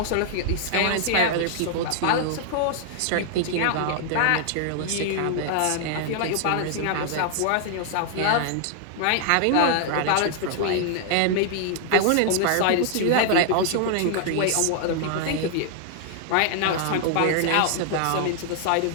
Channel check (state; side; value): different; both; correlation -0.01